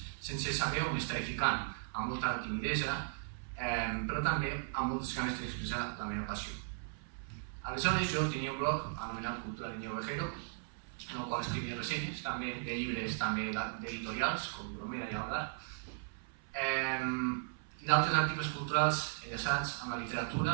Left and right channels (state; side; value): silent; left; 53 dB below the other